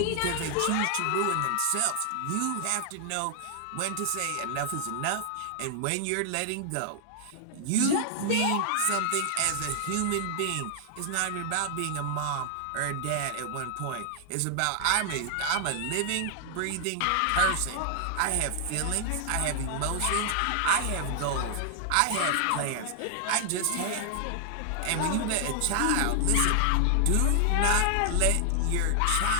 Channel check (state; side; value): different; both; correlation 0.00